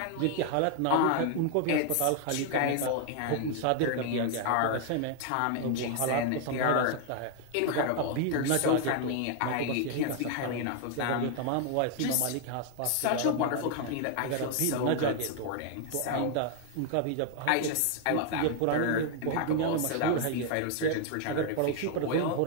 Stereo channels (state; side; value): different; both; correlation 0.00